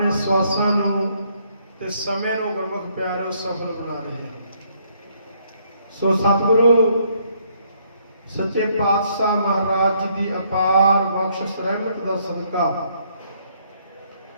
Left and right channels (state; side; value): inverted; both; correlation -0.69